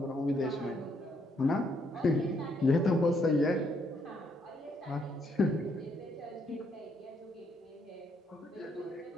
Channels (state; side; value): normal; both; correlation 0.73